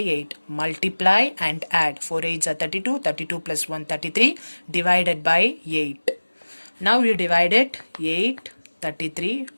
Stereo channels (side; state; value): both; inverted; correlation -1.00